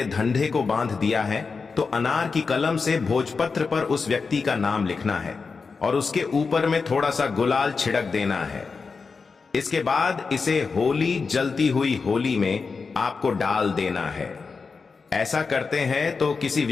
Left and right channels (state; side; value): quieter; right; 4.8 dB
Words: धंधे को बांध दिया है, तो अनार की कलम से भोजपत्र पर उस व्यक्ति का नाम लिखना है और उसके ऊपर में थोड़ा सा गुलाल छिड़क देना है। इसके बाद इसे होली जलती हुई होली में आपको डाल देना है। ऐसा करते हैं तो किसी